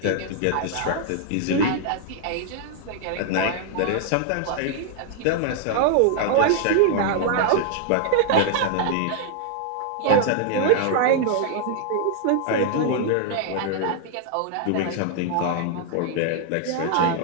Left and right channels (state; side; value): different; both; correlation -0.01